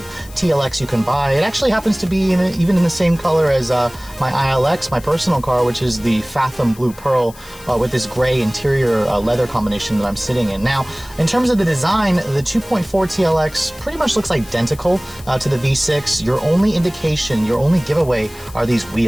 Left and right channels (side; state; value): left; noise; hiss, 21 dB below the sound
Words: TLX you can buy. It actually happens to be even in the same color as my ILX, my personal car, which is the Fathom Blue Pearl with this gray interior leather combination that I'm sitting in. Now, in terms of the design, the 2.4 TLX pretty much looks identical to the V6. Your only indication, your only giveaway are these